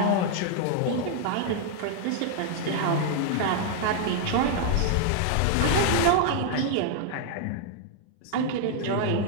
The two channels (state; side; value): different; both; correlation 0.00